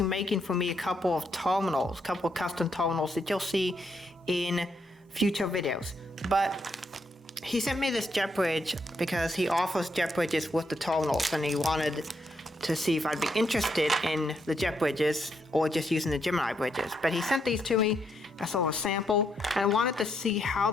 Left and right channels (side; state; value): both; normal; correlation 0.77